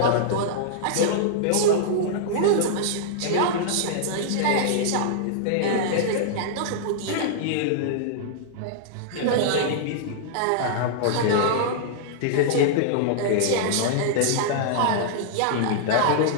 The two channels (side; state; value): both; different; correlation -0.02